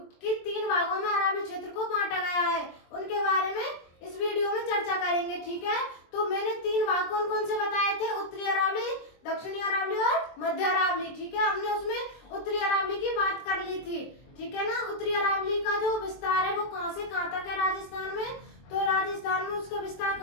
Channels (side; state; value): right; late; 23 ms